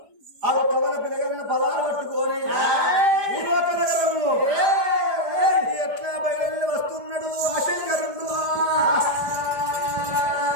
ఆ కవల పిలగల ఫలాలు పట్టుకొని భూలోక నగరము ఎట్లా బయలు వస్తున్నాడు ఆ శంకరుడు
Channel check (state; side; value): late; left; 5.0 ms